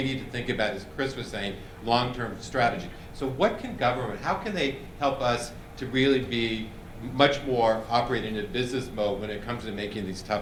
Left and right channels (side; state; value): both; identical; correlation 1.00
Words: need to think about, as Chris was saying, long-term strategy. So how can they help us to really be much more operating in a business mode when it comes to making these